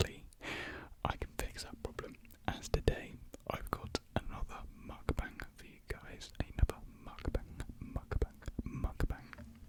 I can fix that problem. As today, I've got another mukbang for you guys. Another mukbang.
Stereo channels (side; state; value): both; identical; correlation 1.00